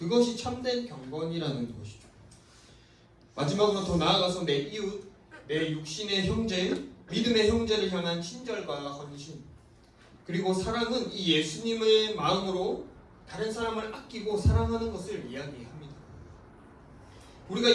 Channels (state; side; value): identical; both; correlation 1.00